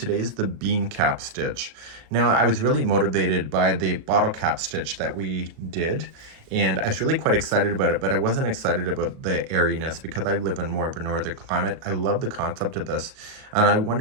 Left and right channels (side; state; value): left; late; 37 ms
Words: is the bean cap stitch. Now, I was really motivated by the bottle cap stitch that we did, and I was really quite excited about it, but I wasn't excited about the airiness because I live in more of a northern climate. I love the concept of this, and I